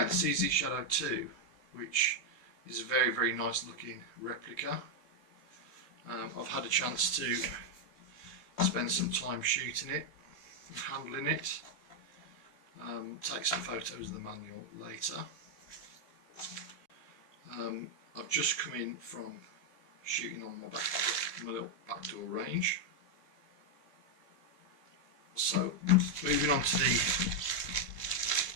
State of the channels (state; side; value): late; right; 3.3 ms